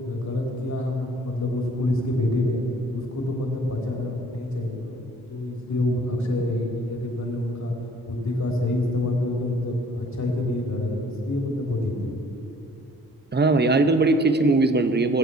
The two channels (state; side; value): normal; both; correlation 0.56